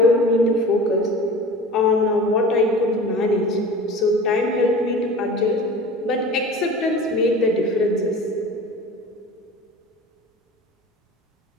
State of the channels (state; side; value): normal; both; correlation 0.38